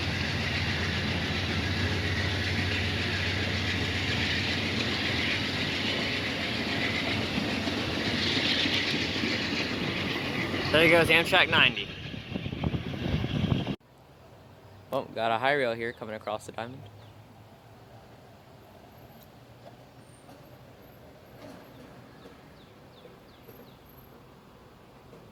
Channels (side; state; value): both; identical; correlation 1.00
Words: There goes Amtrak 90. Well, got a high rail here coming across the diamond.